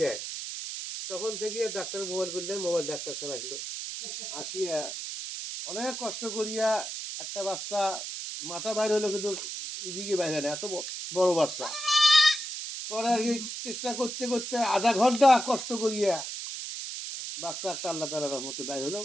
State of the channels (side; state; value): right; noise; hiss, 6 dB below the sound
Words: তখন থেকে ডাক্তার মোবাইল করলেন, মোবাইল ডাক্তার সাহেব আসলো, আসিয়া অনেক কষ্ট করিয়া একটা বাচ্চা মাথা বাইর হলো, কিন্তু এদিকে বাইরে না, এত বড় বাচ্চা। পরে আর কি চেষ্টা করতে করতে আধা ঘন্টা কষ্ট করিয়া বাচ্চা একটা আল্লাহ তাআলার রহমতে বাইর হলো,